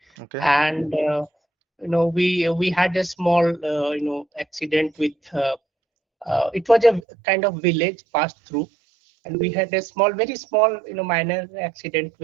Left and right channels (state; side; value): drops out; left; at 7.1 s